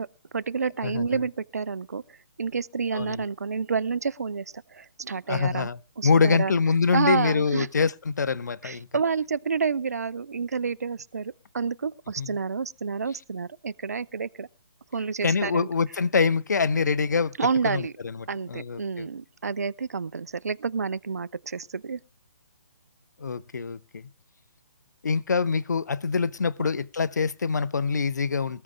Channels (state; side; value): inverted; both; correlation -0.66